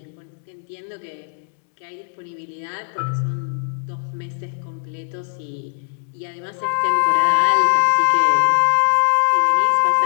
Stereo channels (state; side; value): silent; right; digital silence